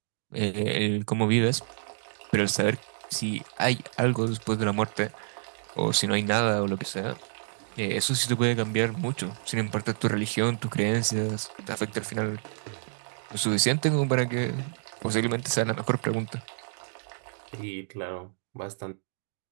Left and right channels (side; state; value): left; silent; digital silence